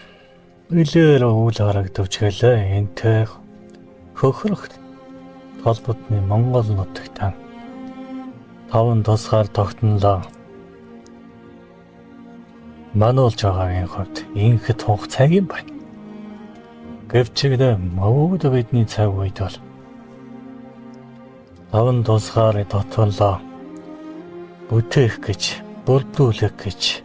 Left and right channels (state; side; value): identical; both; correlation 1.00